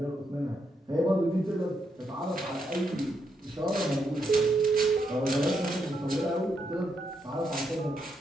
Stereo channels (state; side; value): normal; both; correlation 0.80